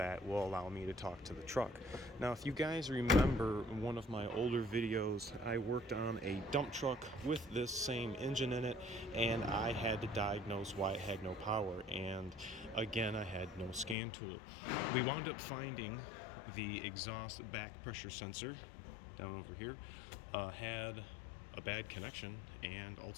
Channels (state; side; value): drops out; right; at 14.0 s